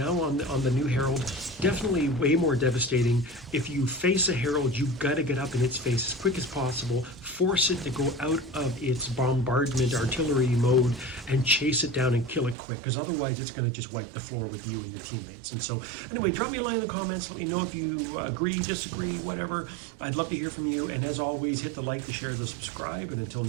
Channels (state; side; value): drops out; left; at 12.6 s